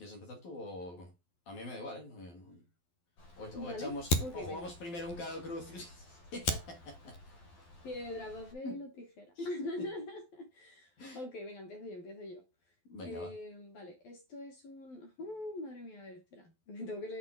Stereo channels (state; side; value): late; right; 12 ms